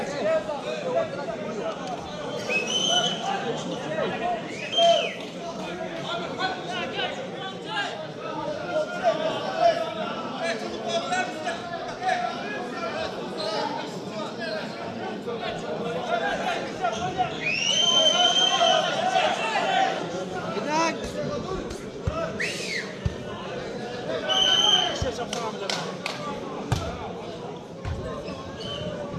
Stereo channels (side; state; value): both; identical; correlation 1.00